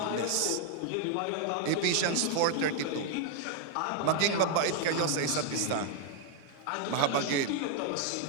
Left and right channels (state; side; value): different; both; correlation 0.00